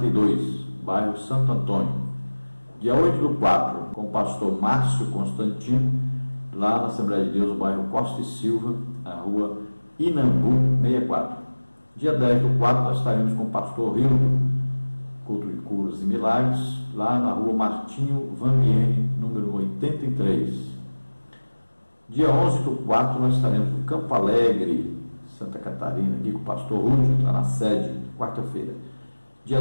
bairro Santo Antônio. Dia 8/4, com o pastor Márcio Constantino, lá na Assembleia de Deus, bairro Costa e Silva, na rua Inambu 64. Dia 10/4, nós estaremos com o pastor Rildo, culto de curas e milagres, lá na rua Martinho Vamiene, número 83. Dia 11/4, nós estaremos no Campo Alegre, Santa Catarina, aqui com o pastor Rúdio, lá na sede, quarta-feira. Dia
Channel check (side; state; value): both; inverted; correlation -1.00